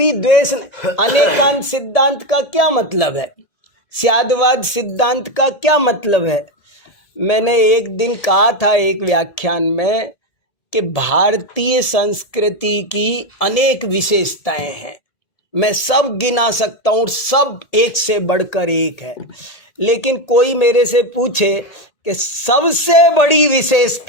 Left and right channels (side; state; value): right; late; 1.8 ms